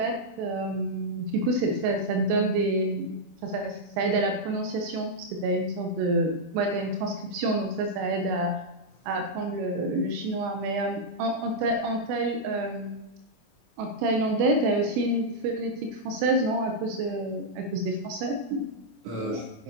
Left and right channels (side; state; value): left; late; 25 ms